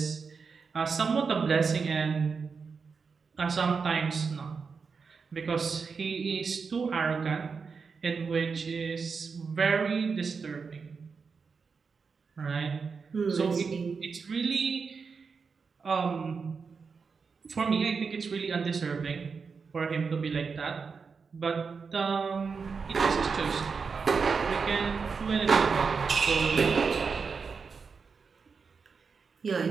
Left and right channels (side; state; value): left; quieter; 5.3 dB